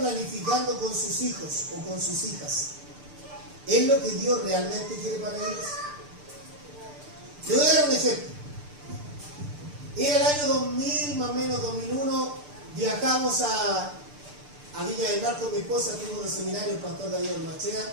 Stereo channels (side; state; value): left; late; 6.8 ms